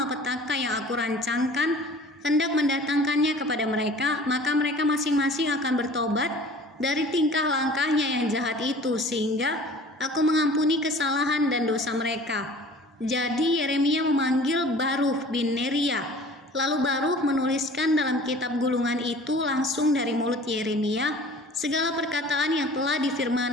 yang aku rancangkan, hendak mendatangkannya kepada mereka, maka mereka masing-masing akan bertobat dari tingkah langkahnya yang jahat itu, sehingga aku mengampuni kesalahan dan dosa mereka. Jadi Yeremia memanggil Baruch bin Neria, lalu Baruch menuliskan dalam kitab gulungan itu langsung dari mulut Yeremia segala perkataan yang telah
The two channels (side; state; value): both; normal; correlation 0.46